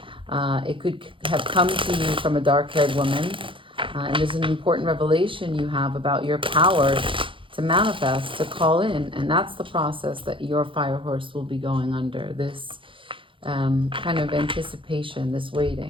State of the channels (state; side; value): late; left; 0.25 ms